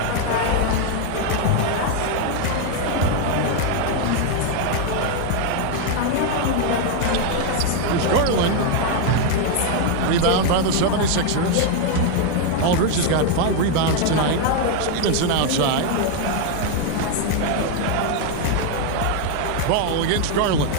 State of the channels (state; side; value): different; both; correlation 0.01